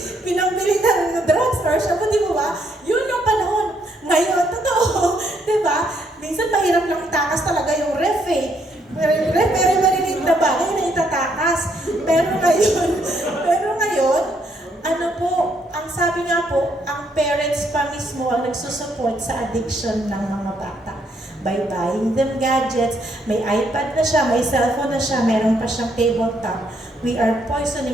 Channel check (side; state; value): both; normal; correlation 0.72